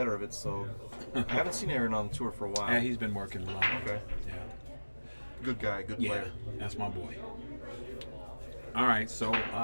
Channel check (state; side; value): inverted; both; correlation -1.00